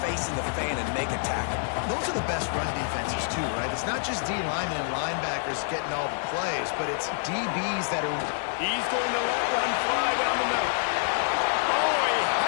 face in the fan, and make a tackle? Those are the best run defenses, too, right? It's not just D linemen and linebackers getting all the plays, but it's DBs that are... He's going to let one fly down the middle. Oh, he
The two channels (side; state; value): right; silent; digital silence